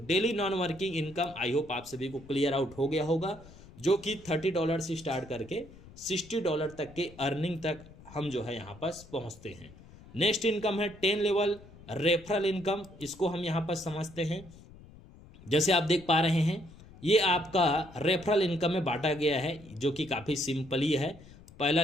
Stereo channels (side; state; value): left; noise; rumble, 20 dB below the sound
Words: non working income I hope आप सभी को क्लियर आउट हो गया होगा, जो कि $30 से स्टार्ट करके $60 तक के अर्निंग तक हम जो है यहाँ पास पहुँचते हैं। नेक्स्ट इनकम है 10 लेवल रेफरल इनकम, इसको हम यहाँ पर समझते हैं। जैसे आप देख पा रहे हैं ये आपका रेफरल इनकम में बांटा गया है, जो कि काफ़ी सिंपल ही है। पहला